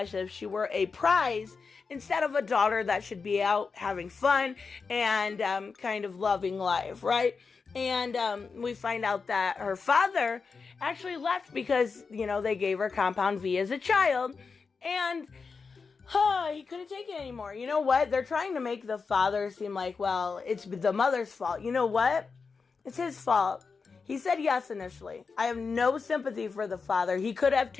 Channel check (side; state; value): right; quieter; 4.9 dB